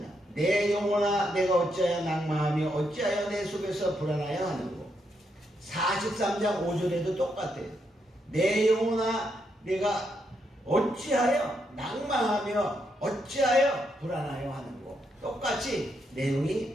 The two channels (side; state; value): both; normal; correlation 0.79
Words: 내 영혼아 내가 어찌하여 낭망하며 어찌하여 내 속에서 불안하여 하는고. 43장 5절에도 똑같아요. 내 영혼아 내가 어찌하여 낭망하며 어찌하여 불안하여 하는고. 똑같이